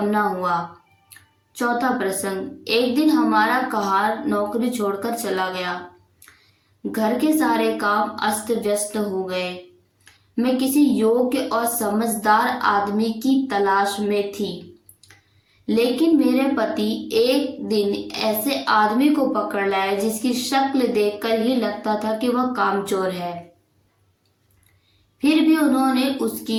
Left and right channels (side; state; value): both; identical; correlation 1.00